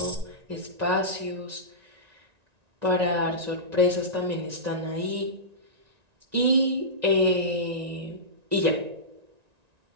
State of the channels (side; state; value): left; late; 1.9 ms